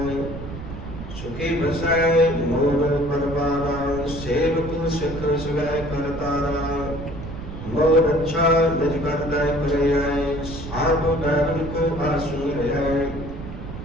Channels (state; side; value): noise; right; rumble, 10 dB below the sound